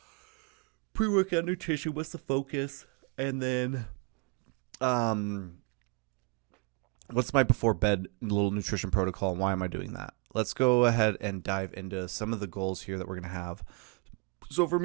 Pre-workout nutrition, what's the focus? And then, what's my before bed little nutrition protocol, and why am I doing that? Let's go ahead and dive into some of the goals here that we're going to have. So for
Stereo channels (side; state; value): left; quieter; 32.6 dB